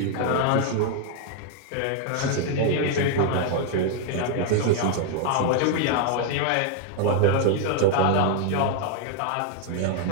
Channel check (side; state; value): both; different; correlation 0.00